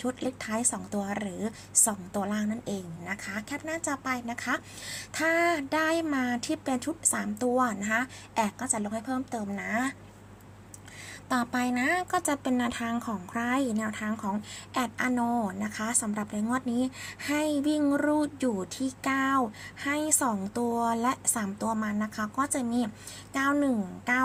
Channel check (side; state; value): both; identical; correlation 1.00